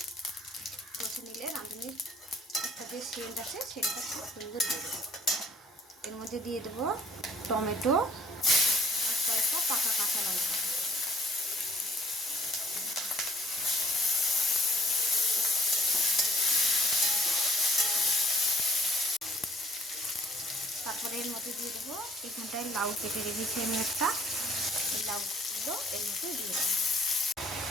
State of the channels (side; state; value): both; normal; correlation 0.59